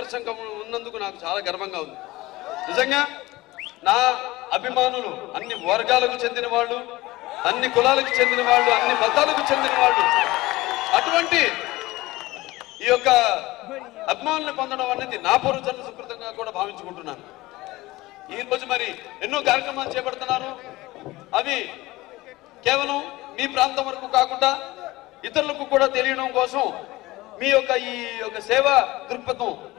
ఉన్నందుకు నాకు చాలా గర్వంగా ఉంది. నిజంగా నా అభిమానులు అన్ని వర్గాలకు చెందిన వాళ్ళు, అన్ని కులాలకు చెందిన వాళ్ళు, అన్ని మతాలకు చెందిన వాళ్ళు. అటువంటి ఈ యొక్క అభిమానులను పొందడం అనేది నా పూర్వజన్మ సుకృతంగా కూడా భావించుకుంటున్నాను. ఈ రోజు మరి ఎన్నో కార్యక్రమాలు చేపడుతున్నాను. అవి కేవలం మీ ప్రాంతం వరకు కాకుండా ఇతరులకు కూడా తెలియడం కోసం, మీ యొక్క ఈ యొక్క సేవా దృక్పథం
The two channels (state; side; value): quieter; right; 19.3 dB